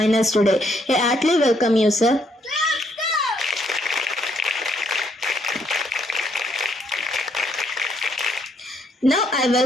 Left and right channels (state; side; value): normal; both; correlation 0.71